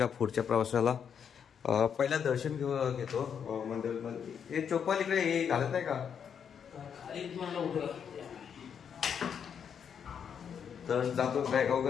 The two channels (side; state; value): right; quieter; 7.6 dB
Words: पुढच्या प्रवासाला. पहिला दर्शन घेतो मंदिरामध्ये. हे चोपाल इकडे हे घालत नाही का? तर जातो, बॅग